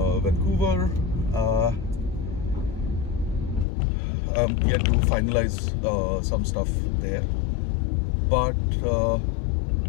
Vancouver. I'm yet to finalize some stuff there, but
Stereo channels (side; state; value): right; drops out; at 3.7 s